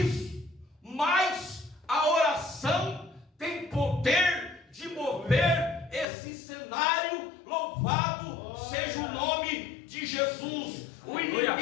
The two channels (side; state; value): right; drops out; at 6.1 s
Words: mas a oração tem poder de mover esse cenário. Louvado seja o nome de Jesus. O